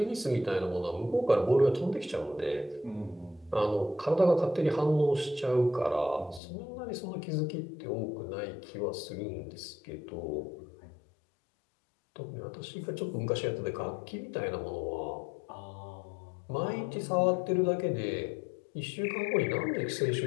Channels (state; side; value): drops out; right; at 6.4 s